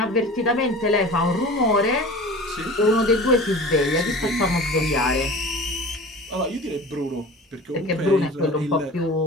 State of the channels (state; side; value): normal; both; correlation 0.38